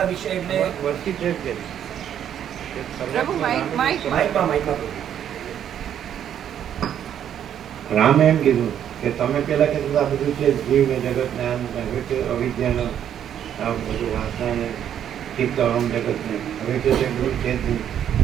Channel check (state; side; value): quieter; left; 9.7 dB